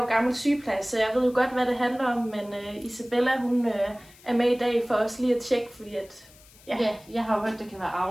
gammel sygeplejer, så jeg ved jo godt, hvad det handler om. Men Isabella, hun er med i dag for os lige at tjekke, fordi at... Ja, jeg har jo hørt, det kan være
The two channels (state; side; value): noise; left; hiss, 25 dB below the sound